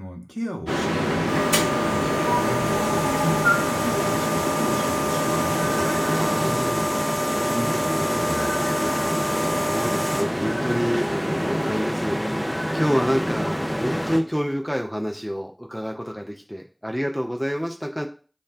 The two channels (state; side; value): identical; both; correlation 1.00